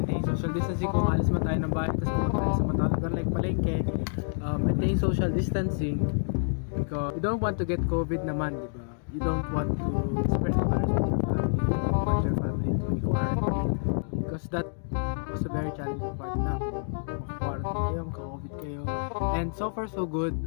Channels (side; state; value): right; silent; digital silence